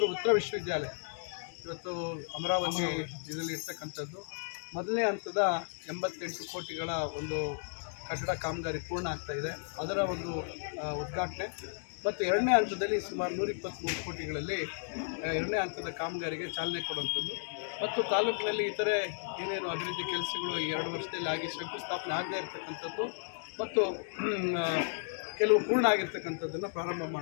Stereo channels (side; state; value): right; silent; digital silence